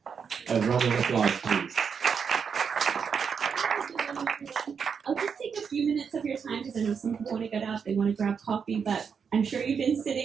A round of applause, please. I'll just take a few minutes of your time because I know some people want to get up, they want to grab coffee, but I'm sure you've been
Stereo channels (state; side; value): quieter; left; 6.5 dB